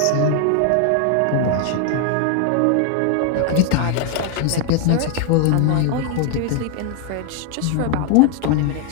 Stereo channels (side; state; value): both; different; correlation 0.00